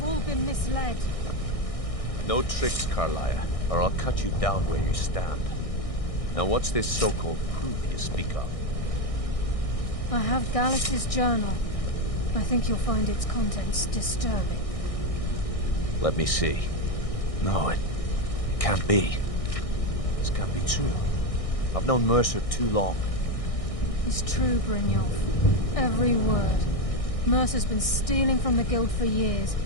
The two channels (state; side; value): late; right; 1.6 ms